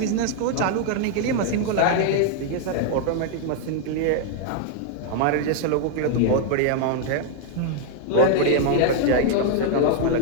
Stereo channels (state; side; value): different; both; correlation 0.00